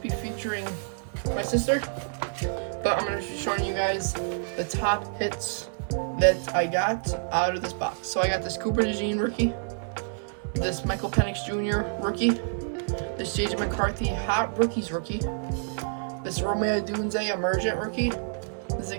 featuring my sister. But I'm going to be showing you guys the top hits that I got out of this box. So I got this Cooper DeJean rookie, this Michael Penix Jr. rookie, this JJ McCarthy Hot Rookies rookie, this Romeo Odunze Emergent rookie, this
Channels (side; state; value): left; silent; 59 dB below the other